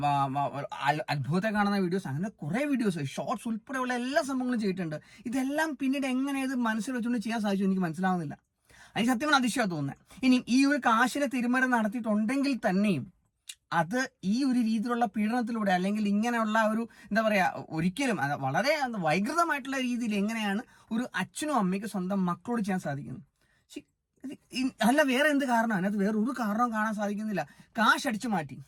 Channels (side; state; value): both; identical; correlation 1.00